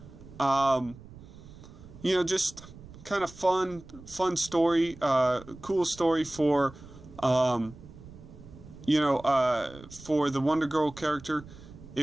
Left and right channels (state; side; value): noise; right; rumble, 18 dB below the sound